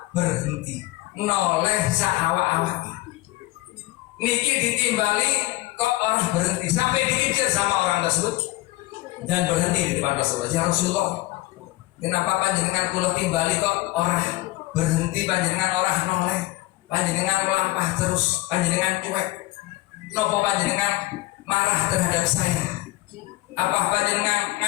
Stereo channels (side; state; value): right; quieter; 18.5 dB